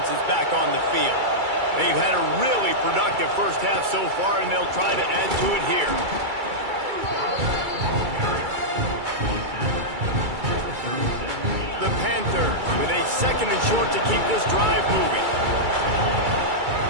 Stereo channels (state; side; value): late; left; 2.3 ms